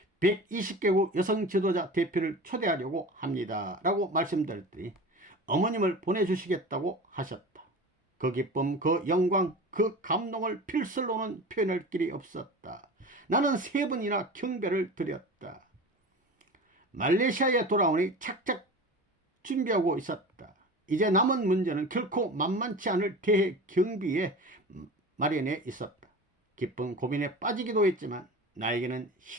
120개국 여성 지도자 대표를 초대하려고 합니다 라고 말씀드렸더니 어머님을 보내주시겠다고 하셨다. 그 기쁨, 그 영광, 그 감동을 필설로는 표현할 길이 없었다. 나는 3번이나 경배를 드렸다. 말레이시아에 돌아오니 착착 준비하고 있었다. 이제 남은 문제는 결코 만만치 않을 대회 경비에 마련해 있었다. 깊은 고민에 빠지기도 했지만 나에게는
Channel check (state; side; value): normal; both; correlation 0.34